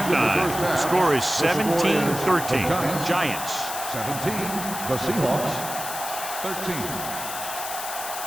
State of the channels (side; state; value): left; noise; hiss, 7 dB below the sound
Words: the score is 17-13. Giants. 17. The Seahawks. 13.